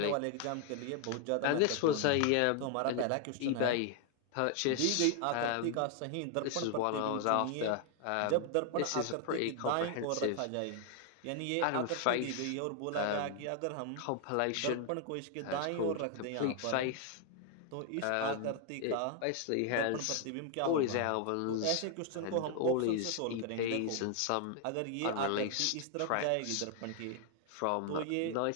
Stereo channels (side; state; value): both; different; correlation 0.00